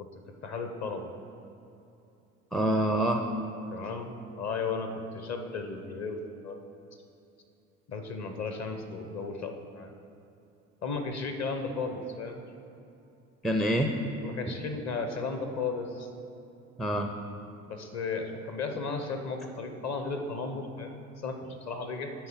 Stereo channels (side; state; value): both; normal; correlation 0.42